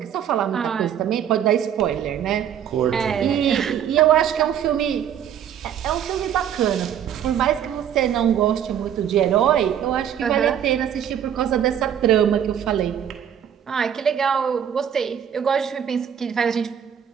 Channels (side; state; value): left; quieter; 9.3 dB